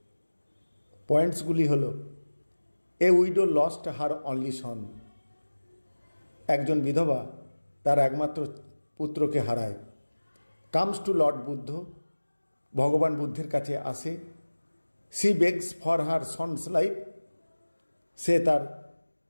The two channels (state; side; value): inverted; both; correlation -1.00